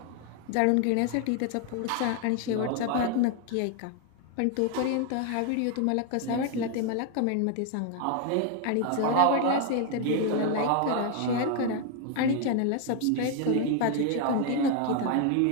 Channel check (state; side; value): different; both; correlation 0.01